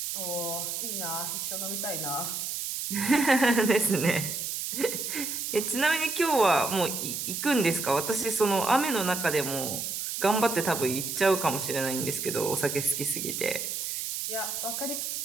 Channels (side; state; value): right; noise; hiss, 3 dB below the sound